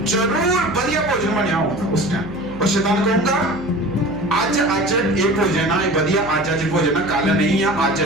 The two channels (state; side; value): noise; right; hum, 14 dB below the sound